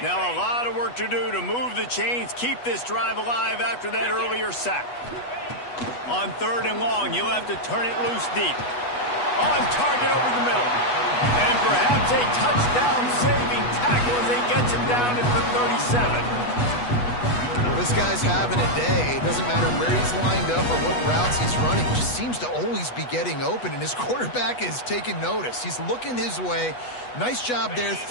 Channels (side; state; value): right; late; 8.2 ms